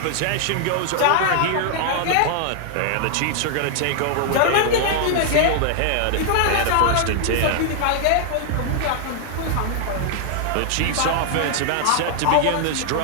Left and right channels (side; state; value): both; different; correlation -0.01